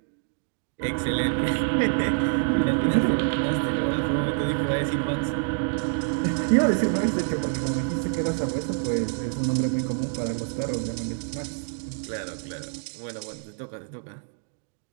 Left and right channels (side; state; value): left; silent; digital silence